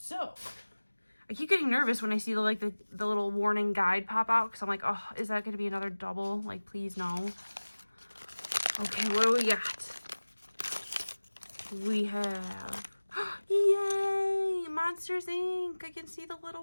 I keep getting nervous when I see the little warning guide pop out because I'm like, oh, is that going to be another double? Like, please no. Okay, what do we got? We have, yay, Monsters Inc. I can see the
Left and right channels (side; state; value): both; inverted; correlation -1.00